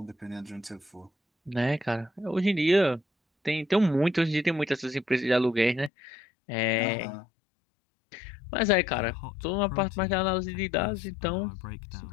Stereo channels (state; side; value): drops out; right; at 5.9 s